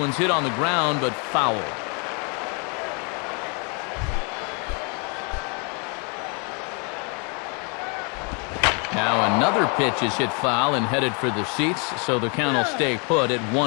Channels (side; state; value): right; quieter; 35.3 dB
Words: hit on the ground, but foul. Now another pitch is hit foul and headed for the seats, so the count will stay put at